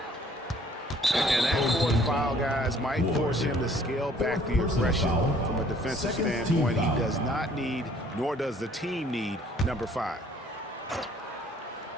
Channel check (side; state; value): both; normal; correlation 0.58